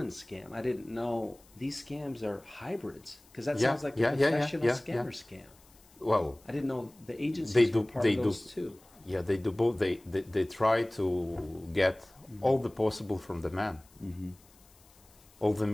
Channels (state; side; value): noise; left; hiss, 28 dB below the sound